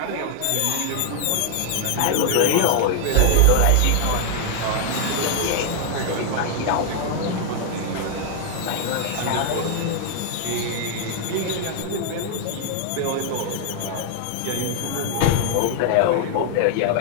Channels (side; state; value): both; different; correlation 0.00